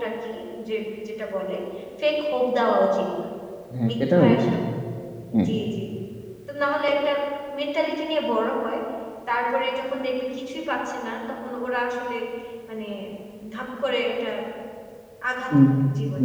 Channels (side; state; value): both; identical; correlation 1.00